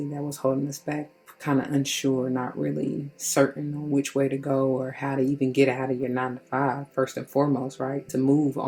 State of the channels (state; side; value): identical; both; correlation 1.00